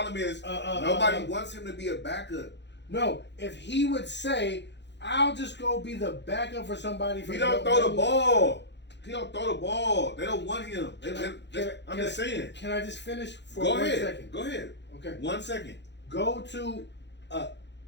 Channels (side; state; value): right; late; 0.51 ms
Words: is nobody wants him to be a backup. No, if he would say, "I'll just go be the backup for somebody," He don't throw the ball. He don't throw the ball. They don't want him. I'm just saying. Can I just finish for Go 1 ahead. second? Go ahead. Okay. 1 second. Go to